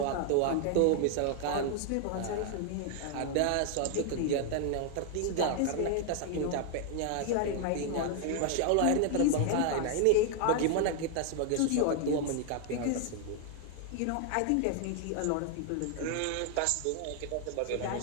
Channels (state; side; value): different; both; correlation 0.00